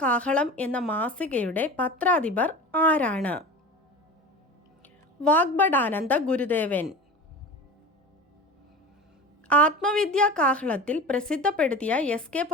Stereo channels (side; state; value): both; normal; correlation 0.33